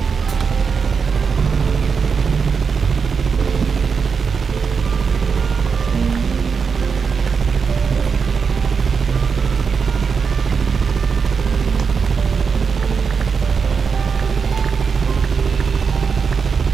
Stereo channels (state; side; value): quieter; left; 5.7 dB